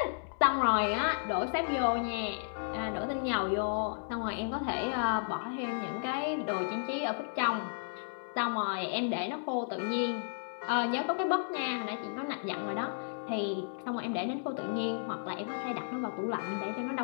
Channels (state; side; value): silent; right; 56 dB below the other